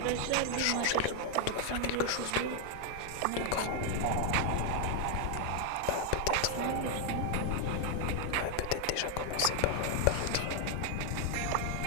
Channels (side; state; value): both; different; correlation 0.00